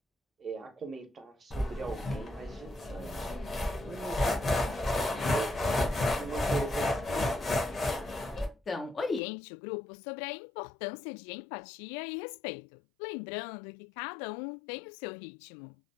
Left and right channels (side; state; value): right; drops out; at 9.2 s